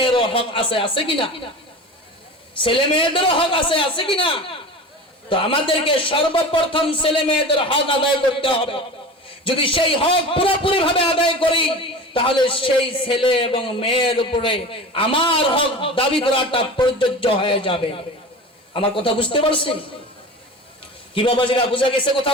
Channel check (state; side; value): normal; both; correlation 0.34